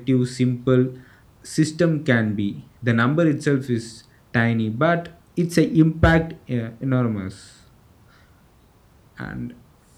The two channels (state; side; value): identical; both; correlation 1.00